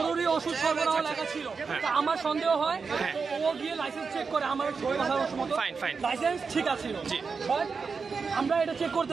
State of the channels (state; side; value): quieter; left; 5.1 dB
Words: ওষুধ সরবরাহ লেখা ছিল। তো আমার সন্দেহ হয় ও গিয়ে লাইসেন্স চেক করে, আমার লাইসেন্স ঠিক আছে, আমরা এটা চেক